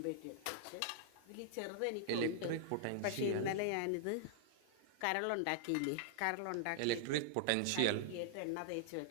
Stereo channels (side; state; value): both; different; correlation -0.01